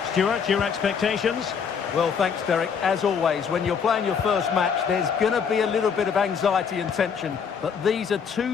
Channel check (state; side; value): quieter; right; 6.7 dB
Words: Stuart, your expectations? Well, thanks, Derek. As always, when you're playing your first match, there's going to be a little bit of anxiety and tension. But these are